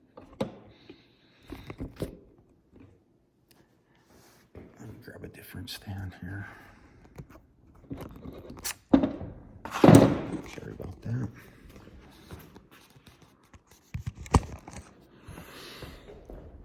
Let me grab a different stand here. Sorry about that.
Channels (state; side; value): identical; both; correlation 1.00